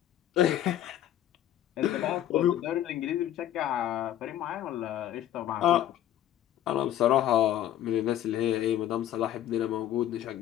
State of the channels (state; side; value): quieter; right; 11.9 dB